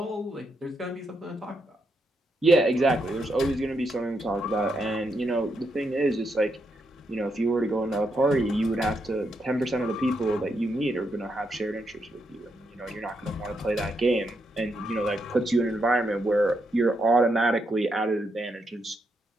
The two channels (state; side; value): normal; both; correlation 0.81